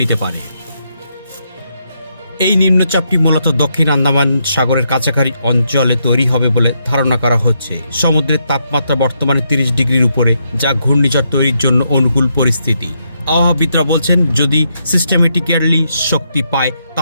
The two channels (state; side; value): inverted; both; correlation -0.79